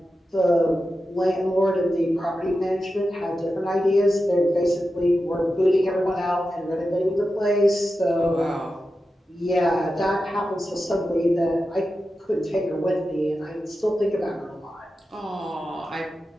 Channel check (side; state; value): both; normal; correlation 0.91